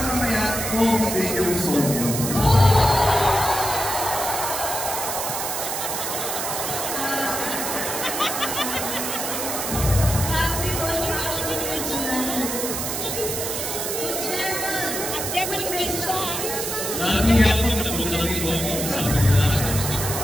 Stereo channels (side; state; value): right; noise; hiss, 3 dB below the sound